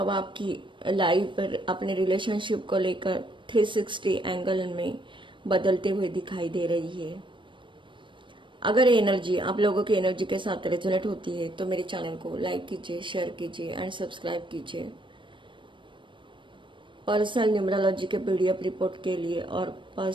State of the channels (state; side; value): late; left; 0.24 ms